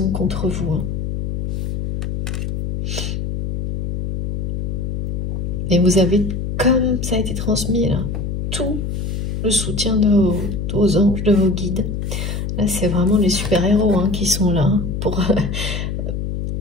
contre vous. Hein. Et vous avez, comme ça a été transmis, là, tout le soutien de vos anges, de vos guides. Là, c'est vraiment les super-héros hein, qui sont là pour...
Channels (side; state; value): left; noise; hum, 2 dB below the sound